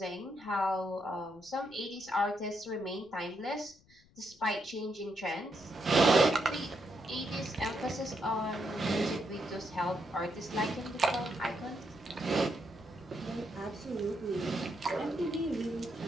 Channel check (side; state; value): left; noise; rumble, 28 dB below the sound